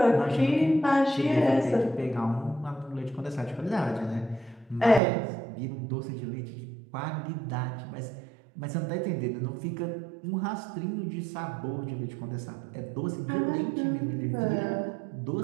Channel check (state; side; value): drops out; left; at 5.0 s